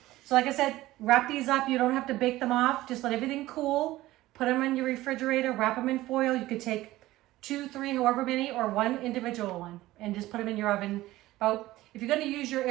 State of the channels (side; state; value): left; quieter; 16.8 dB